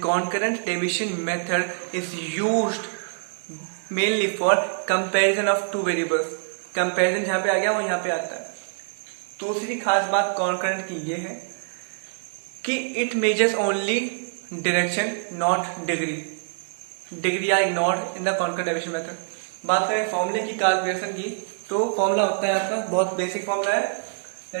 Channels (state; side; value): silent; left; digital silence